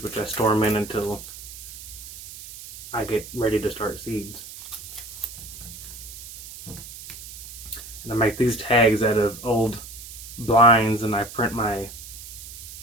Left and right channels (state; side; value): noise; right; hiss, 13 dB below the sound